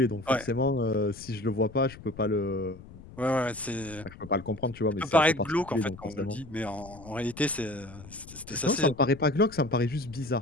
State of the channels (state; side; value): noise; left; rumble, 17 dB below the sound